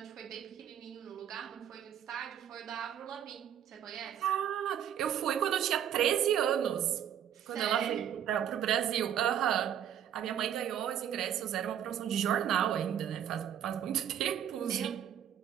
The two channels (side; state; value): left; quieter; 9.7 dB